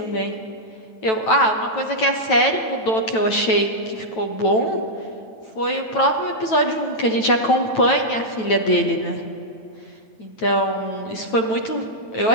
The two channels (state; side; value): late; right; 9.1 ms